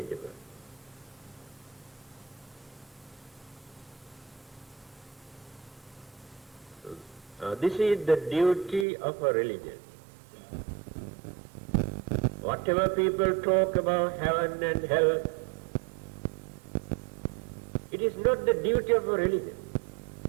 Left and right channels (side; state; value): left; drops out; at 8.8 s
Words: This is the duty of a religion. Whatever people talk about heaven and hell, it is not the duty of a religion.